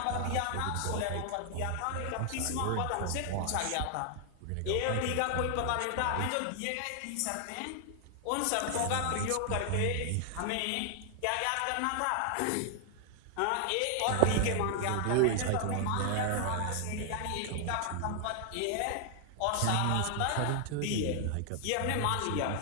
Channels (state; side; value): different; both; correlation 0.00